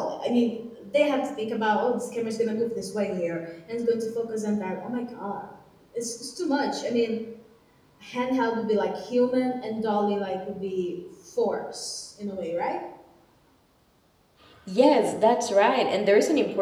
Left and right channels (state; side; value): identical; both; correlation 1.00